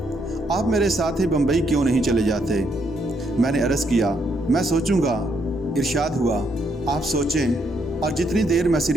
आप मेरे साथ ही बम्बई क्यों नहीं चले जाते। मैंने अर्ज़ किया, मैं सोचूंगा। इरशाद हुआ, आप सोचें और जितनी देर मैं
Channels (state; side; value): normal; both; correlation 0.74